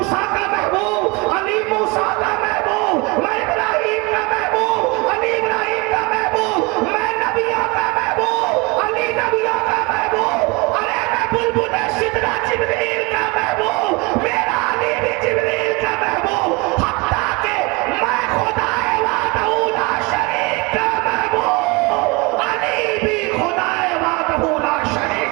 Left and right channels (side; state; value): left; quieter; 26.4 dB